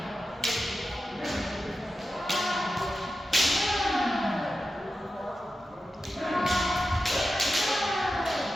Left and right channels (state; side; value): normal; both; correlation 0.92